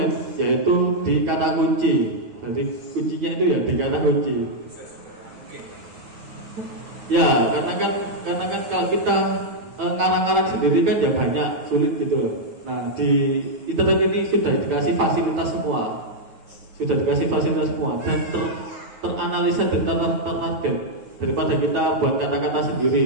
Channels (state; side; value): late; left; 9.4 ms